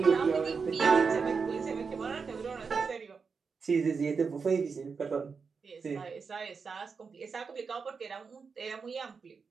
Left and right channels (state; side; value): quieter; left; 5.3 dB